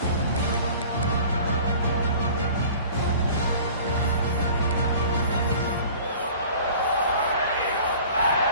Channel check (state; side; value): inverted; both; correlation -0.45